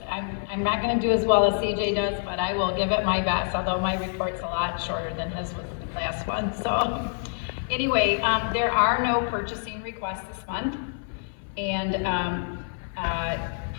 I'm not going to do as well as CJ does, but I will give it my best, although my report's a lot shorter than his was the last one. So anyway, there are no purchasing requests this month, and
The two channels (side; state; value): right; silent; 58 dB below the other